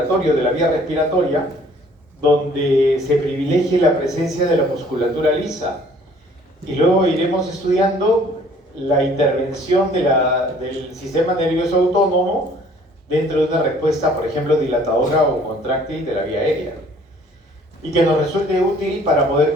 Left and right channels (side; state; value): both; normal; correlation 0.56